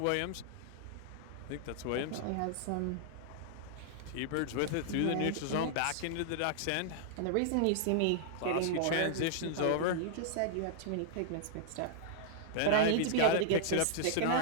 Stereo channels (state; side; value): different; both; correlation -0.01